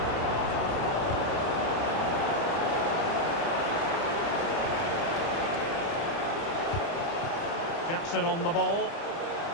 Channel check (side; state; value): right; late; 30 ms